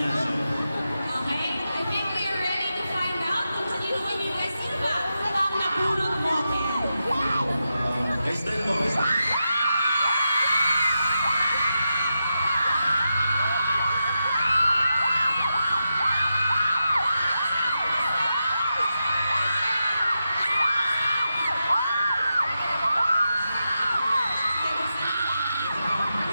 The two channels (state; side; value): inverted; both; correlation -0.88